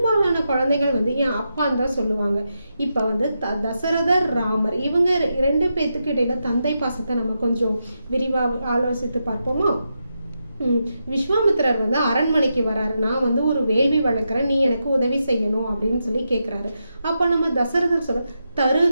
குழந்தைகள் என் அப்பான்னு தான் சொல்லுவாங்க. இப்ப தசரதர், ராமர், இவங்க 2 பேத்துக்கு இடையில தந்தை பாசத்தை நம்ம கொஞ்சம் விரிவா ஆலோசித்து பார்ப்போமா? விஸ்வாமித்திரர் அரண்மனைக்கு வராரு. நான் ஒரு வேள்வி வளர்க்குறேன், நீ எனக்கு உதவி செய்யணும் அப்படின்னு சொல்லி கேட்குறாரு. அப்போ நம்ம தசரதர் சொல்ற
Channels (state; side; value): inverted; both; correlation -0.86